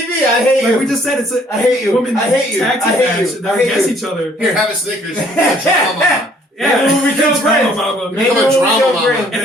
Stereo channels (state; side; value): normal; both; correlation 0.61